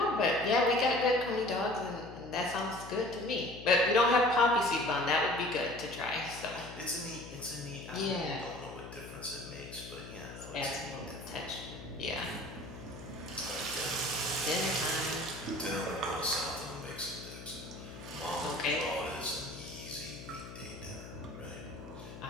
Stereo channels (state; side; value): noise; left; hum, 13 dB below the sound